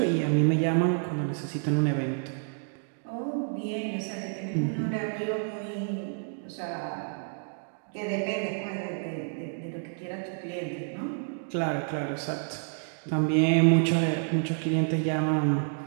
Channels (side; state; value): left; silent; digital silence